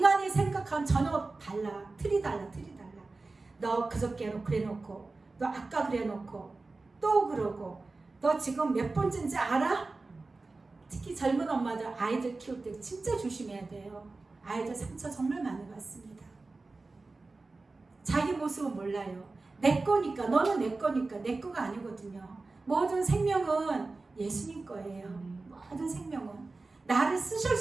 생각하면 전혀 달라. 틀이 달라. 너 그저께 그래 놓고 너 아까 그래 놓고 또 그러고 너 지금 몇 번째인지 알아? 특히 젊은 엄마들 아이들 키울 때 진짜 조심해야 돼요. 아이들 상처 정말 많이 받습니다. 자기 모습은 몰라요. 내 거니까 너는 내 거니까 내 거가 아니거든요. 모든 생명은 예수님 거예요. 모든 생명은 나를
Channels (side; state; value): left; quieter; 3.5 dB